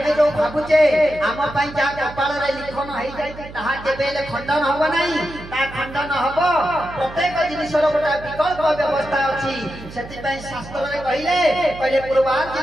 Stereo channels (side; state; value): right; noise; hum, 15 dB below the sound